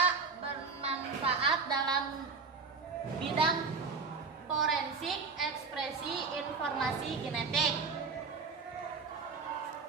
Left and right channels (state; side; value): quieter; left; 4.8 dB